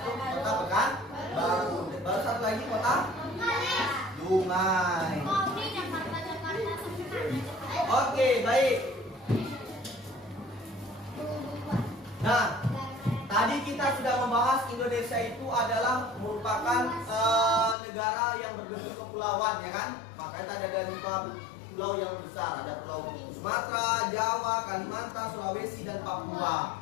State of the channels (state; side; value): drops out; right; at 17.8 s